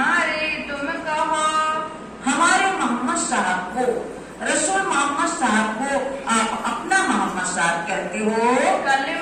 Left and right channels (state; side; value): identical; both; correlation 1.00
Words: तुम कहो। हमारे मोहम्मद साहब को, रसूल मोहम्मद साहब को आप अपना मोहम्मद साहब कहते हो।